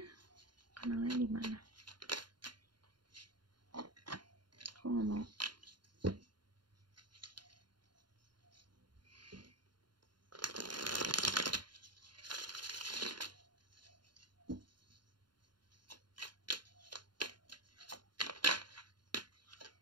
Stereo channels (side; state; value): left; late; 0.71 ms